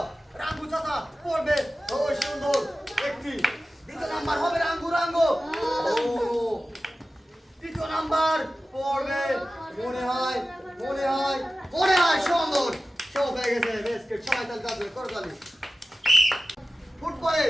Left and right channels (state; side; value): normal; both; correlation 0.94